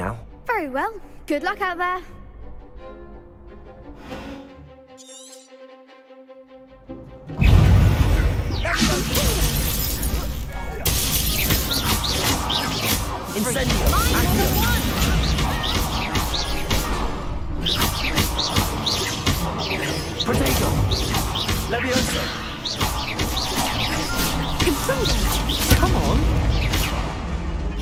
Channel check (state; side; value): identical; both; correlation 1.00